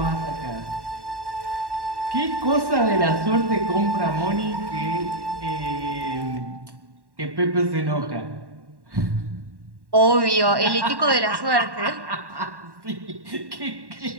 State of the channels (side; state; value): left; late; 1.1 ms